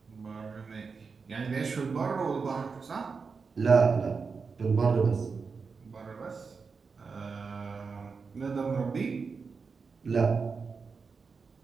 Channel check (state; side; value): quieter; left; 5.0 dB